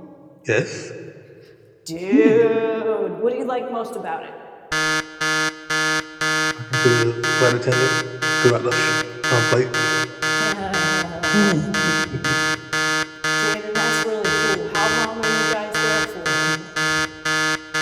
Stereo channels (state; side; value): identical; both; correlation 1.00